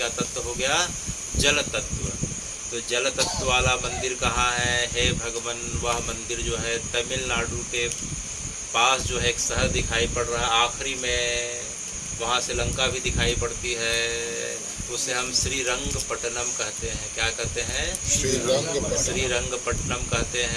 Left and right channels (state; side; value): identical; both; correlation 1.00